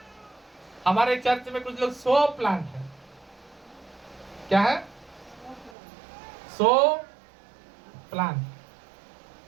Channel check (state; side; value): drops out; left; at 5.8 s